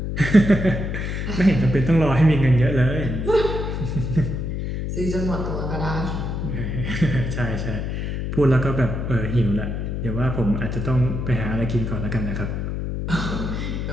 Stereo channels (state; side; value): noise; left; hum, 3 dB below the sound